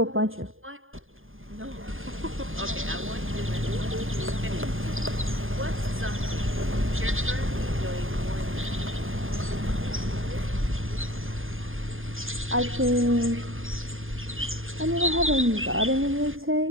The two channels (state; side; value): late; left; 0.59 ms